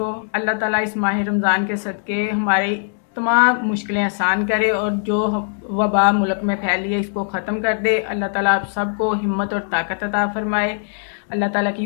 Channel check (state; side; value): silent; right; 65 dB below the other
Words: अल्लाह ताला इस माह रमज़ान के सदके हमारी तमाम मुश्किलें आसान करे और जो वबा मुल्क में फैली है इसको ख़त्म कर दे। अल्लाह ताला आप सबको हिम्मत और ताकत अता फरमाए। अल्लाह ताला की